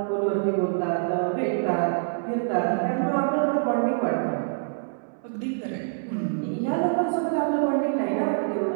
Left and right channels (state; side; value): silent; left; 61 dB below the other